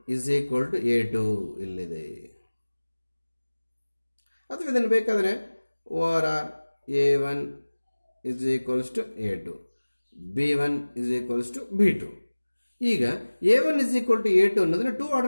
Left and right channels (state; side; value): inverted; both; correlation -1.00